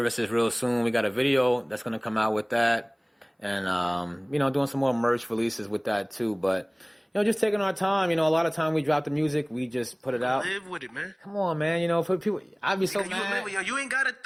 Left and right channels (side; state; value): both; identical; correlation 1.00